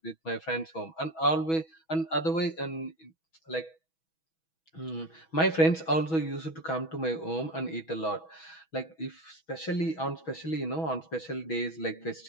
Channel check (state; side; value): late; right; 6.2 ms